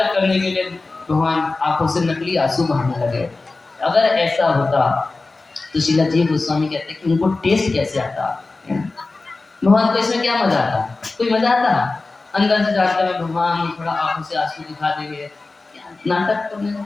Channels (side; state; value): right; quieter; 3.5 dB